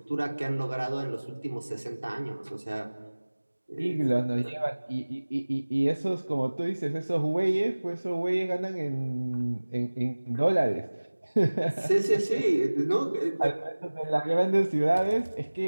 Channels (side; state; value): both; inverted; correlation -1.00